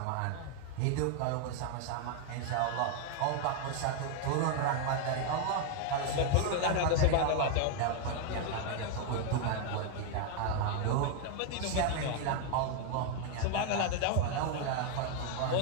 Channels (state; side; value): different; both; correlation 0.01